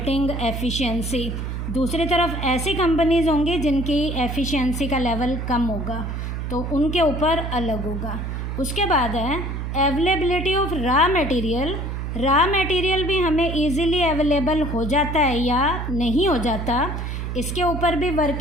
efficiency, दूसरी तरफ ऐसी कंपनीज होंगी जिनकी एफिशिएंसी का लेवल कम होगा, तो उनके ऊपर अलग होगा। उसके बाद है availability of raw material. Raw material भी हमें इजीली अवेलेबल हो जाता है या नहीं हो जाता, इसके ऊपर भी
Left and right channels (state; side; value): noise; right; hum, 4 dB below the sound